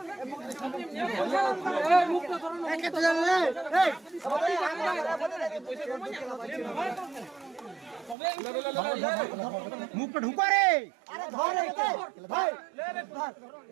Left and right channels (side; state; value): left; drops out; at 8.2 s